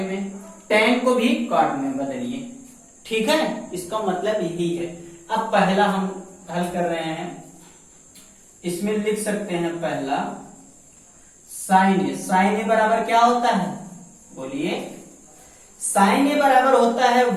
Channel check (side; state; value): both; identical; correlation 1.00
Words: में, tan को भी काट में बदलिए, ठीक है। इसका मतलब यही है। अब पहला हम हल कर रहे हैं, इसमें लिख सकते हैं पहला साइन ए। साइन ए बराबर क्या होता है, बोलिए। साइन ए बराबर होता है